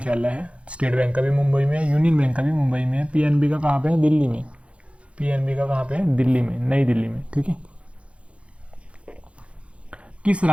है। स्टेट बैंक का भी मुंबई में है, यूनियन बैंक का भी मुंबई में है, पीएनबी का कहाँ पे है? दिल्ली में। नई दिल्ली में, ठीक है। किस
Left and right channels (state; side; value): late; left; 0.061 ms